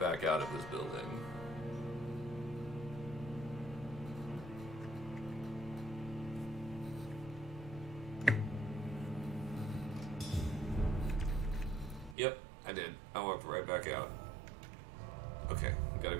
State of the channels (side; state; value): left; drops out; at 12.2 s